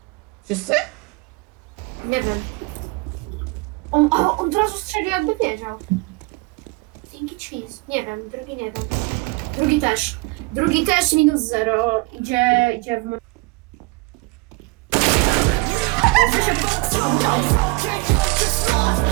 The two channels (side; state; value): left; quieter; 26.5 dB